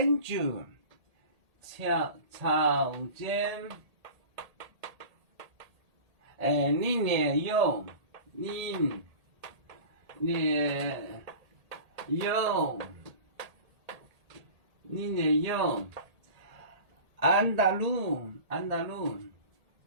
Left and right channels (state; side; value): late; left; 1.8 ms